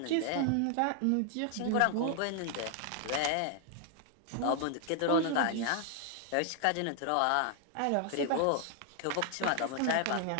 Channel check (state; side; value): different; both; correlation 0.00